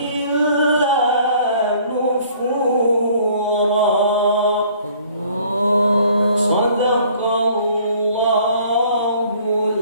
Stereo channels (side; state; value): both; inverted; correlation -0.56